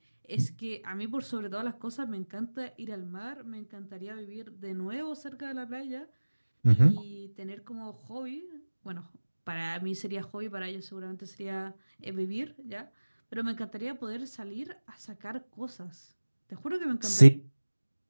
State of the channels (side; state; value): both; inverted; correlation -1.00